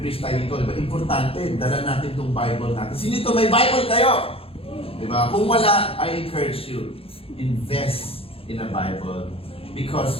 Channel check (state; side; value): late; right; 0.27 ms